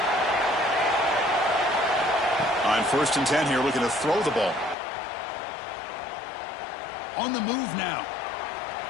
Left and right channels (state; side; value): drops out; right; at 4.8 s